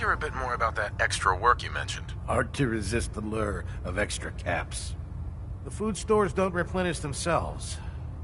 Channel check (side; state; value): both; identical; correlation 1.00